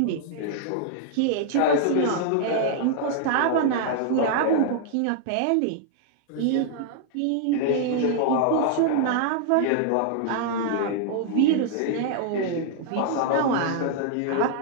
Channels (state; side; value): different; both; correlation -0.01